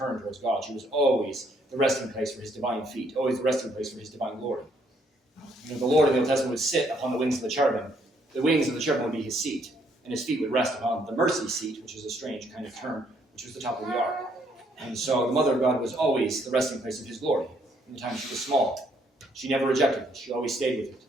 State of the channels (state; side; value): normal; both; correlation 0.69